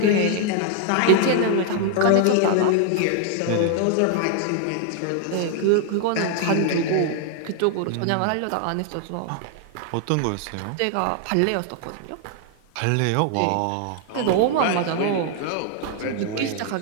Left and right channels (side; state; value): both; different; correlation 0.00